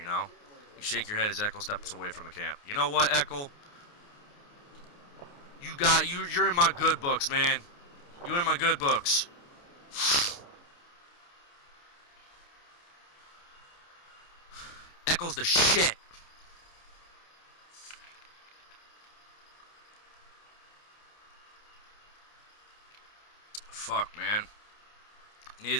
know. You shake your head as Eckel steps away from the camp. You know what, Eckel? You're in my good books, man. You're in my good books. Eckel's the shit. Fuck, man.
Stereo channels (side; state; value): right; late; 29 ms